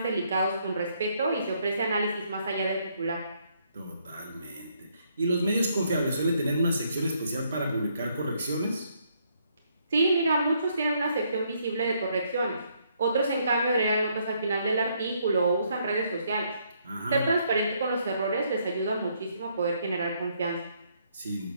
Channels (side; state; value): both; inverted; correlation -0.71